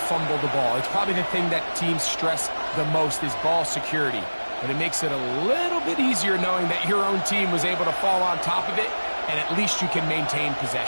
the ball. It's probably the thing that teams stress the most is ball security. But it makes it a little bit easier knowing that your own team was able to fall on top of it, and at least you can maintain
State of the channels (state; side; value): inverted; both; correlation -1.00